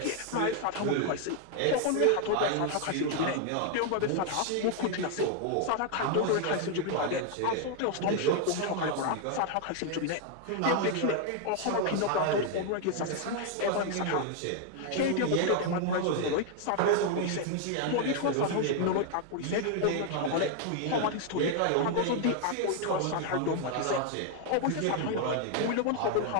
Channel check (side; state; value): both; different; correlation 0.00